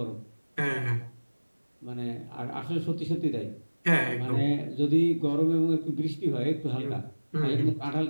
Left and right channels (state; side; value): inverted; both; correlation -1.00